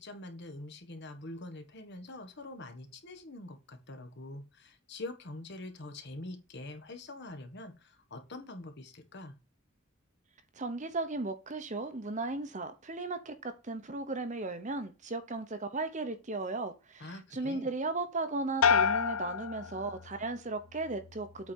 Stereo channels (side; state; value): both; normal; correlation -0.11